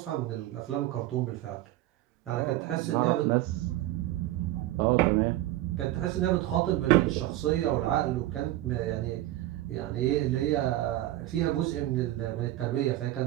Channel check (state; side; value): quieter; left; 15.4 dB